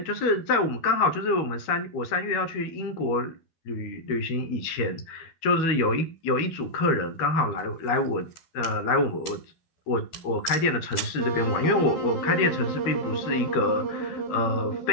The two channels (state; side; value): late; right; 13 ms